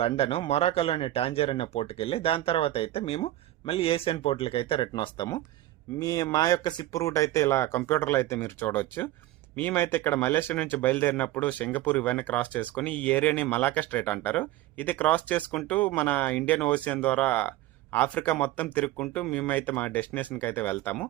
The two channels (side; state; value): left; quieter; 15.1 dB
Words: లండన్, మొరాకోలోని టాంజర్ అనే పోర్ట్కి వెళ్ళి దాని తర్వాత అయితే మేము మళ్ళీ ఏషియన్ పోర్ట్లకి అయితే రిటర్న్ వస్తాము. మా యొక్క షిప్ రూట్ అయితే ఇలా కంప్యూటర్లో అయితే మీరు చూడవచ్చు. మేమైతే ఇక్కడ మలేషియా నుంచి బయలుదేరినప్పుడు సింగపూర్ ఇవన్నీ క్రాస్ చేసుకుని ఈ ఏరియాని మలాకా స్ట్రైట్ అంటారు. ఇది క్రాస్ చేసుకుంటూ మన ఇండియన్ ఓషియన్ ద్వారా ఆఫ్రికా మొత్తం తిరుగుకుంటూ మేమైతే మా డెస్టినేషన్కి అయితే వెళ్తాము.